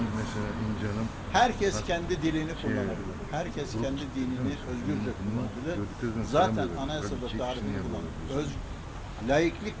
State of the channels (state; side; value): identical; both; correlation 1.00